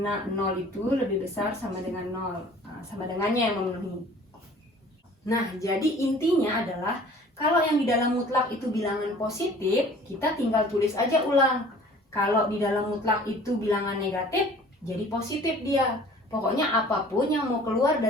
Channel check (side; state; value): both; normal; correlation 0.49